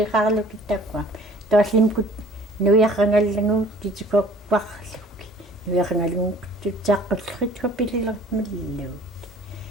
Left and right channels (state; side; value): normal; both; correlation 0.52